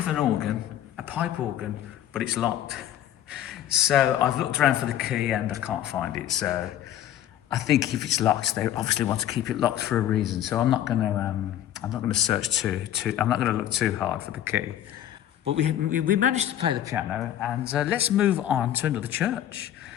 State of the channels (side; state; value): right; quieter; 11.4 dB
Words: an organ, a pipe organ, but it's locked. So I've looked around for the key and I can't find it. So I think if it's locked, they obviously want to keep it locked for a reason. So I'm not going to search too. I'm not going to look too hard for the key. But we managed to play the piano, and let's move on to another church